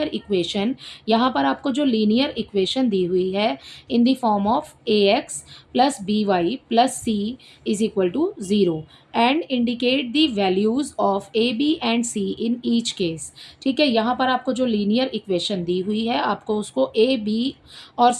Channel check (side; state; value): both; identical; correlation 1.00